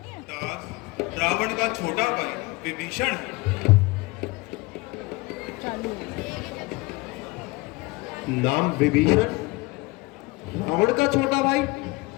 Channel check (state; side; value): quieter; right; 23.3 dB